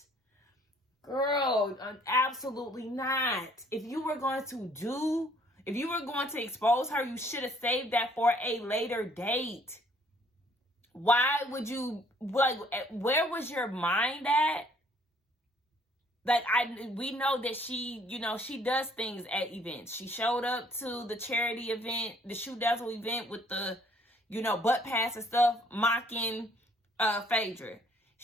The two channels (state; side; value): normal; both; correlation 0.61